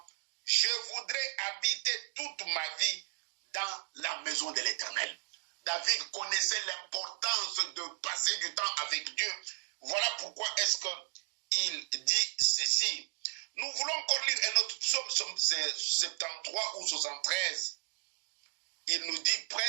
Je voudrais habiter toute ma vie dans la maison de l'Éternel. David connaissait l'importance de passer du temps avec Dieu. Voilà pourquoi est-ce qu'il dit ceci. Nous voulons encore lire un autre psaume, psaume 73 ou 73. Il nous dit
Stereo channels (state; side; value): silent; left; 55 dB below the other